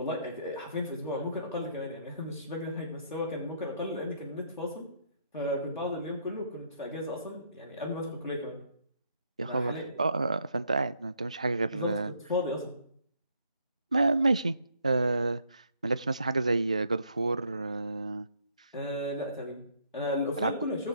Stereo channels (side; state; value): both; inverted; correlation -0.70